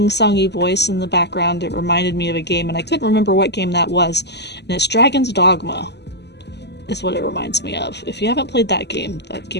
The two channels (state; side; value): late; right; 0.50 ms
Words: voice in the background, it reminded me of a game, and I couldn't remember what game that was. And it's Dragon's Dogma is what it reminds me of. If you haven't played that game